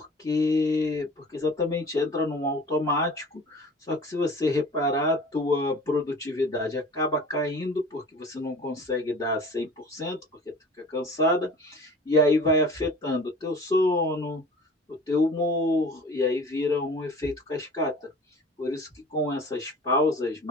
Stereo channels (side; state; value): both; normal; correlation 0.43